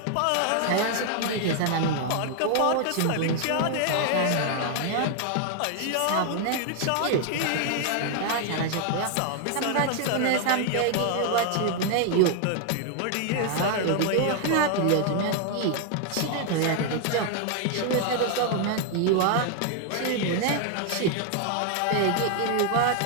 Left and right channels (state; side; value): different; both; correlation 0.00